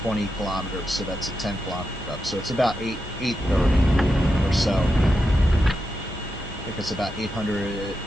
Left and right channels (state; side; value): normal; both; correlation 0.87